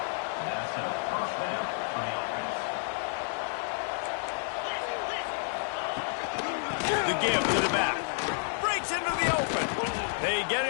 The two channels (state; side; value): silent; right; 58 dB below the other